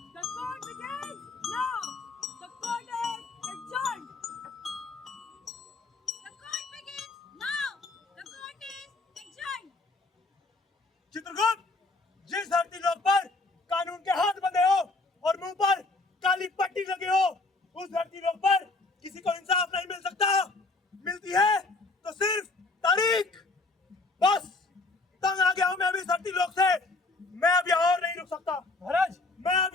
The court begins now. The court is adjourned. The court begins now. The court is adjourned. Chitragupta, जिस धरती लोक पर कानून के हाथ बंधे हो और मुंह पर काली पट्टी लगी हो, उस धरती लोक पर किसी को इंसाफ नहीं मिल सकता। मिलती है तो सिर्फ तारीख। बस तंग आ गया हूं मैं अभी धरती लोक से। मैं अब यहाँ और नहीं रुक सकता। महाराज, मैं अब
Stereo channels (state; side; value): quieter; right; 3.3 dB